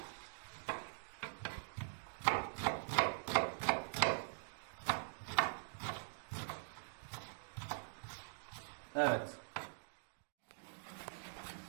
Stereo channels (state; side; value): silent; left; digital silence